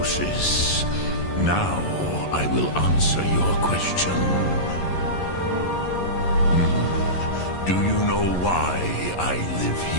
now I will answer your question. Do you know why I live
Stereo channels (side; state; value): right; late; 11 ms